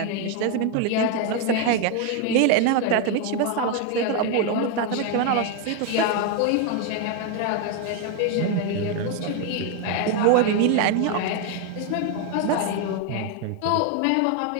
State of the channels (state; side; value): different; both; correlation 0.01